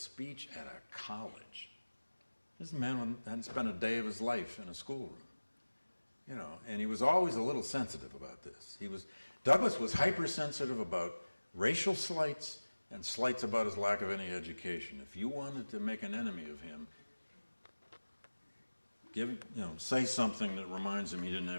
at a college. This man hadn't spent a day of his life in a schoolroom, you know, and he was always a little sensitive about this. Douglass was hypersensitive about racial slights and slights about his lack of any education. If you wanted to make an enemy of him, say something that reminds him he didn't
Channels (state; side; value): inverted; both; correlation -1.00